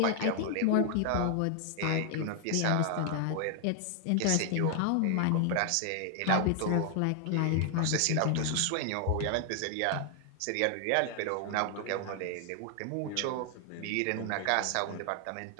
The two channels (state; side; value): different; both; correlation 0.00